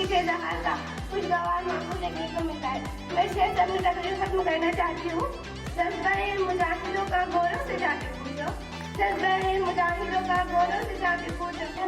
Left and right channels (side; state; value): both; identical; correlation 1.00